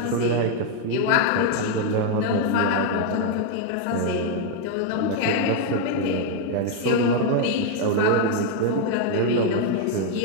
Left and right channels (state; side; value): different; both; correlation 0.01